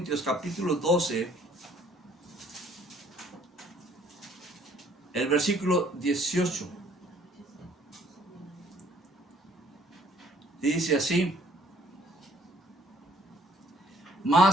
12, el versículo 18. Dice así:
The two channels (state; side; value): normal; both; correlation 0.61